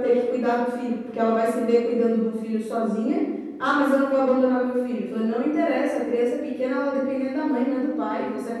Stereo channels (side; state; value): both; identical; correlation 1.00